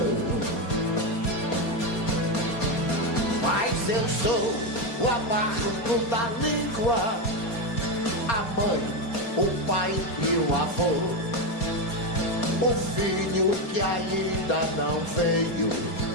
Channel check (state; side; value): late; right; 4.3 ms